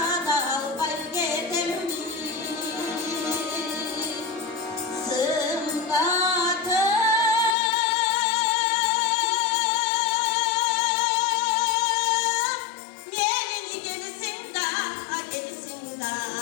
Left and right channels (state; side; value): drops out; right; at 7.6 s